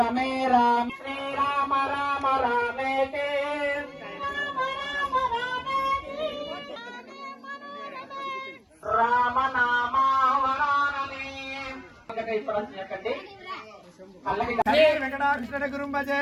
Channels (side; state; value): both; identical; correlation 1.00